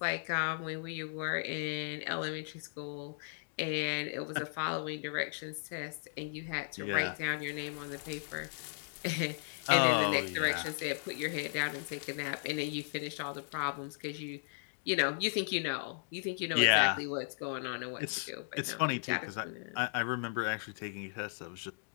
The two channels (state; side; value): silent; right; digital silence